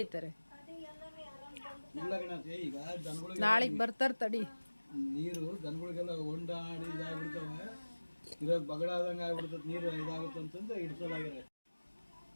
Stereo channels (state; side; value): inverted; both; correlation -1.00